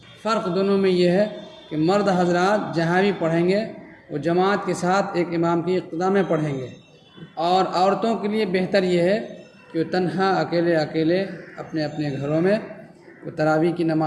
فرق دونوں میں یہ ہے کہ مرد حضرات جہاں بھی پڑھیں گے وہ جماعت کے ساتھ ایک امام کی اقتداء میں پڑھیں گے، اور عورتوں کے لیے بہتر یہ ہے کہ وہ تنہا اکیلے اپنے اپنے گھروں میں وہ تراویح کی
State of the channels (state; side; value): identical; both; correlation 1.00